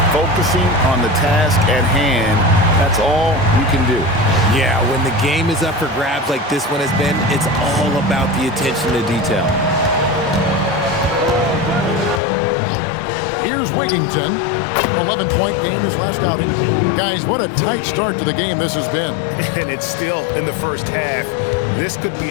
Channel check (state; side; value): drops out; right; at 12.2 s